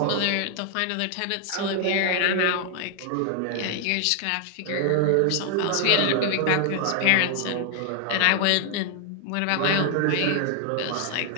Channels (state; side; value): different; both; correlation 0.00